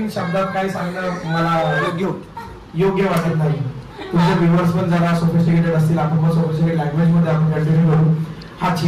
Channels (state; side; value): identical; both; correlation 1.00